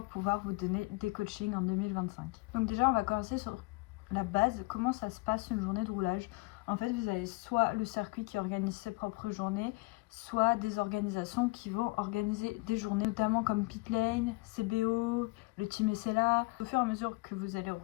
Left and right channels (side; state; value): right; quieter; 24.4 dB